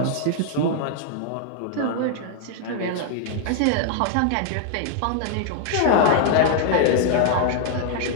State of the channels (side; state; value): both; different; correlation -0.01